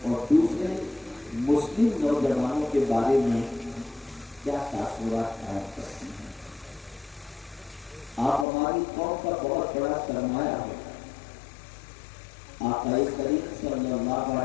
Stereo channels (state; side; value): drops out; right; at 8.5 s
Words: اور دوسرے مسلم نوجوانوں کے بارے میں کیا تاثرات قائم کرتے ہیں۔ آپ ہماری قوم کا بہت بڑا سرمایہ ہو۔ آقا کریم صلی اللہ